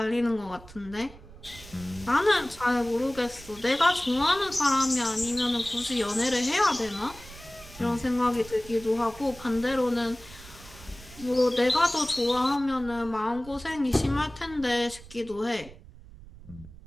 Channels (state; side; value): noise; right; rumble, 19 dB below the sound